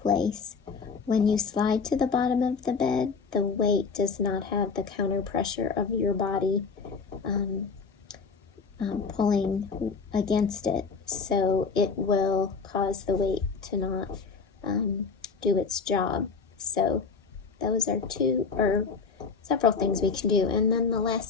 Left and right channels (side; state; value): right; quieter; 5.1 dB